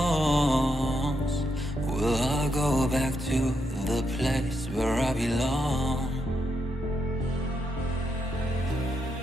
Will I go back to the place where I belong?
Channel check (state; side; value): normal; both; correlation 0.81